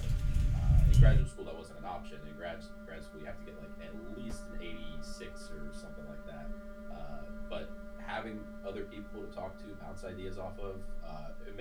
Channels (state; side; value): identical; both; correlation 1.00